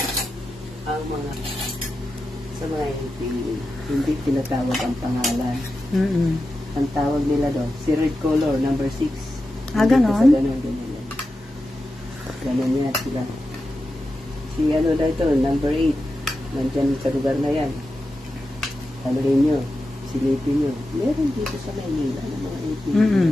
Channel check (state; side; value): normal; both; correlation 0.91